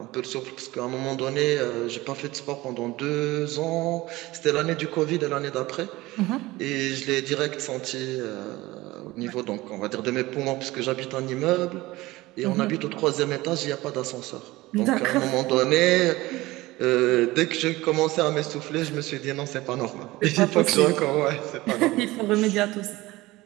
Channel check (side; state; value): left; quieter; 19.2 dB